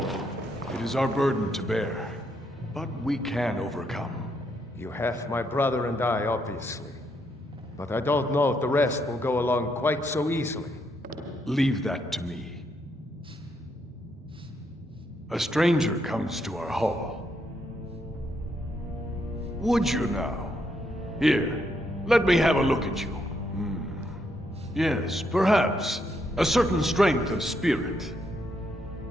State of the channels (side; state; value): both; normal; correlation 0.76